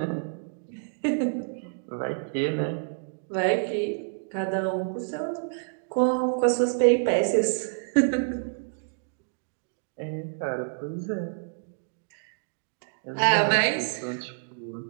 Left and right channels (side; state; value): left; silent; digital silence